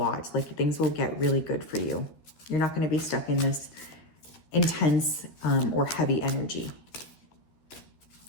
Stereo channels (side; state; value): right; late; 13 ms